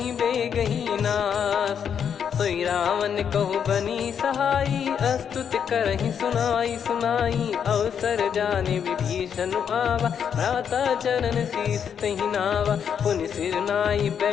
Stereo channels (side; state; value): right; quieter; 7.8 dB